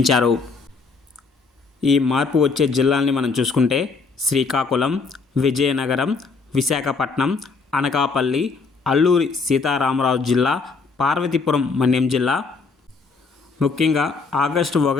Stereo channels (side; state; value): right; quieter; 4.5 dB